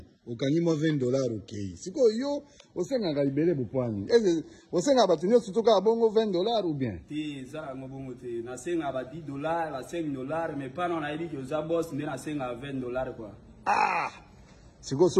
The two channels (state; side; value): identical; both; correlation 1.00